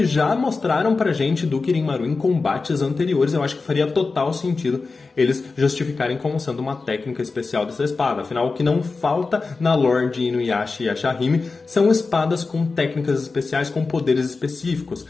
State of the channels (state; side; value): quieter; right; 4.1 dB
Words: já mostraram pra gente do Kirin-Maru em combates anteriores. Eu acho que faria total sentido eles justificarem como sendo uma técnica especial dessa espada. Afinal, o que não falta na lore de Inuyasha e Ashahime são espadas com técnicas especiais, com poderes específicos,